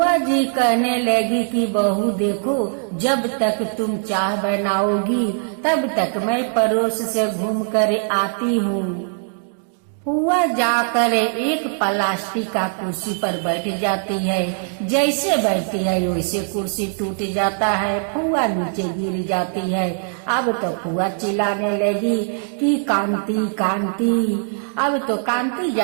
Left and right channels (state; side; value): silent; left; digital silence